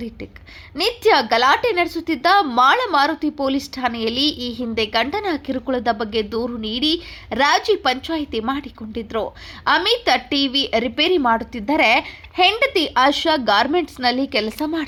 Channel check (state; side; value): identical; both; correlation 1.00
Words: ನಡೆಸುತ್ತಿದ್ದ ಮಾಳಮಾರುತಿ ಪೊಲೀಸ್ ಠಾಣೆಯಲ್ಲಿ ಈ ಹಿಂದೆ ಗಂಡನ ಕಿರುಕುಳದ ಬಗ್ಗೆ ದೂರು ನೀಡಿ ರಾಜಿ ಪಂಚಾಯಿತಿ ಮಾಡಿಕೊಂಡಿದ್ರು. ಅಮಿತ್ ಟಿವಿ ರಿಪೇರಿ ಮಾಡುತ್ತಿದ್ದರೆ ಹೆಂಡತಿ ಆಶಾ ಗಾರ್ಮೆಂಟ್ಸ್ನಲ್ಲಿ ಕೆಲಸ